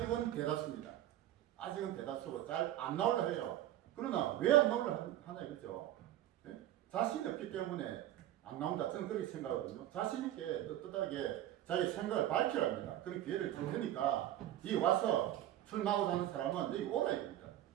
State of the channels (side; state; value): left; quieter; 13.0 dB